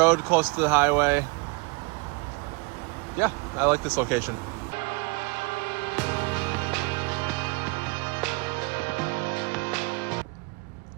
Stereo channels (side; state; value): left; quieter; 28.4 dB